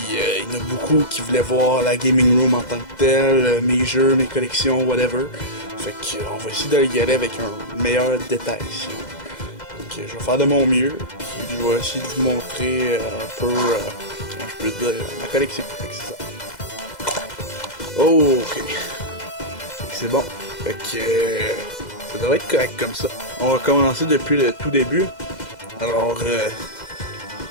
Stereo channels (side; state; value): right; late; 2.0 ms